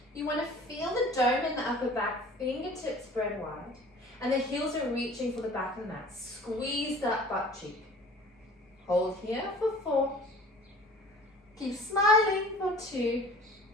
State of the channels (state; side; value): normal; both; correlation 0.46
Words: You want to feel the dome in the upper back, fingertips spread wide, and the heels are reaching for the back of the mat. Squeeze that butt cheek. Hold here for 4. Keep smiling for 2.